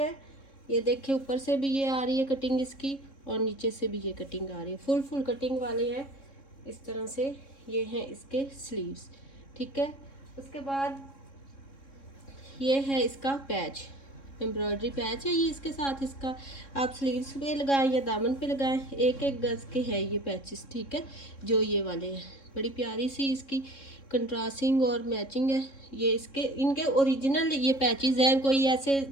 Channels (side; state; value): right; late; 3.7 ms